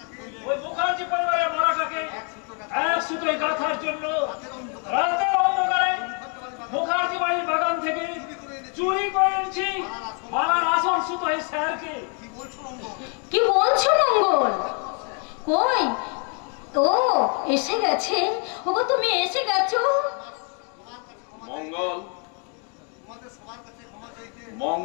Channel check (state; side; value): quieter; right; 38.8 dB